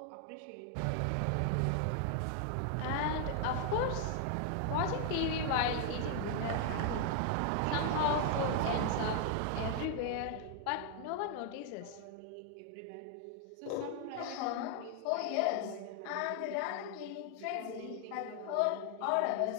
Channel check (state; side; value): different; both; correlation 0.00